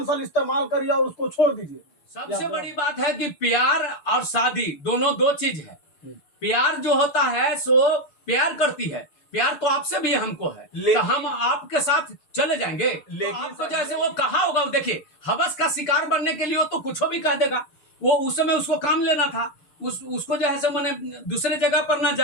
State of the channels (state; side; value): late; right; 6.8 ms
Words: साल इस्तेमाल करिए और उसको छोड़ दीजिए? सबसे बड़ी बात है कि प्यार और शादी दोनों दो चीज है। प्यार जो होता है सो प्यार करती है, प्यार तो आपसे भी हमको है, तो हम आपके साथ चले जाएंगे। लेकिन आपको जैसे वो कहा होगा, देखिए हवस का शिकार बनने के लिए तो कुछ भी कह देगा। वो उस समय उसको काम लेना था, उसको जो है सो मैंने दूसरे जगह पर ना